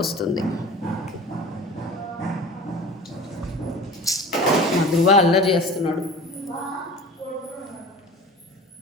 వస్తుంది. మా ధృవ అల్లరి చేస్తున్నాడు.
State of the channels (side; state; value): both; normal; correlation 0.38